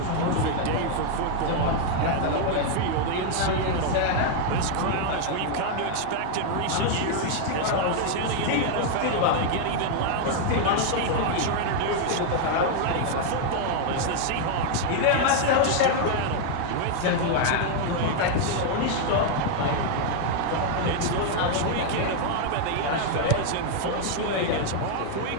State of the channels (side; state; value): both; different; correlation 0.00